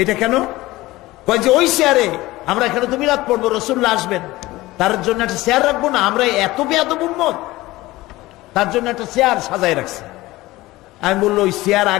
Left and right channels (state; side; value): quieter; right; 18.7 dB